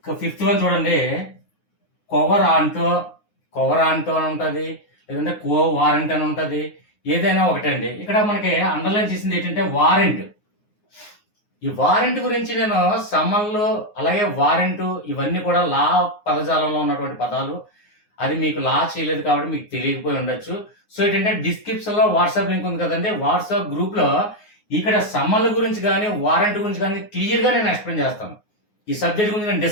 Fifth one చూడండి, కొవరాంటో అని ఉంటుంది, లేదంటే కో వారెంట్ అని ఉంటుంది, ఏదైనా ఒకటే అండి. ఇక్కడ మనకి అండర్లైన్ చేసింది ఏంటంటే వారెంట్. ఈ వారెంట్ గురించి నేను సమ్మన్లు అలాగే వారెంట్ ఇవన్నీ కూడా లా పదజాలంలో ఉన్నటువంటి పదాలు. అది మీకు లా చేయలేదు కాబట్టి మీకు తెలియకపోయి ఉండొచ్చు. సో ఏంటంటే డిస్క్రిప్షన్ లో వాట్సాప్ లింక్ ఉంది కదండి, వాట్సాప్ గ్రూప్ లో ఇక్కడ సమ్మన్ల గురించి కానీ వారెంట్ గురించి కానీ క్లియర్ గా నేను ఎక్స్ప్లెయిన్ చేస్తాను. ఈ సబ్జెక్ట్ గురించి నేను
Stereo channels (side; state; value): right; late; 9.6 ms